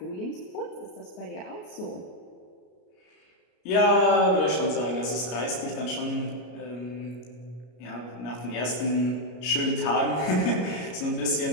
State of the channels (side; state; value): right; late; 33 ms